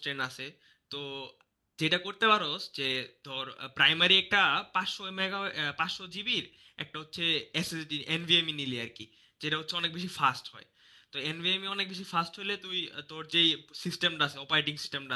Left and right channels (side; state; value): both; identical; correlation 1.00